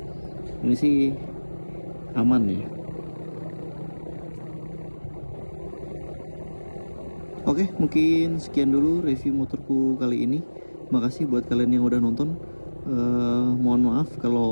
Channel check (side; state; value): both; inverted; correlation -1.00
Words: sih aman ya. Oke, mungkin sekian dulu review motorku kali ini. Makasih buat kalian yang udah nonton. Mohon maaf